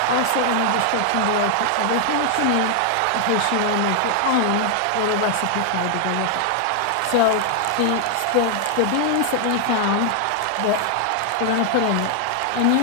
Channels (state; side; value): different; both; correlation 0.00